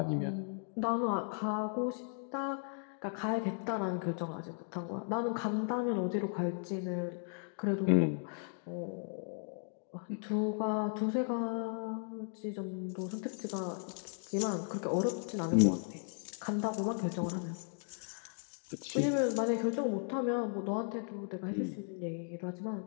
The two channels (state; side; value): silent; right; 54 dB below the other